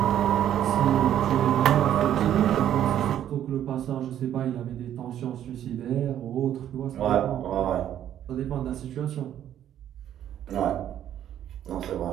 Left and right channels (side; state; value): left; quieter; 10.9 dB